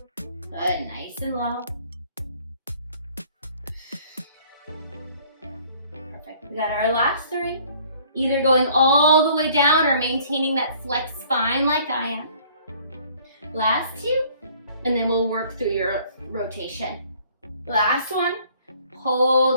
Good, nice and low. Perfect, we got our last 3. Either going all the way down or maintaining that flex spine like I am. Last 2, and then we'll work through your rotation. Last one.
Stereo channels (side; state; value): both; inverted; correlation -0.57